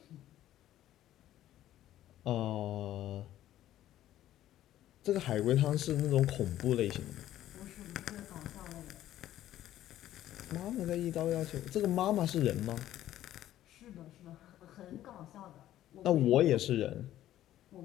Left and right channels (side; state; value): right; quieter; 13.1 dB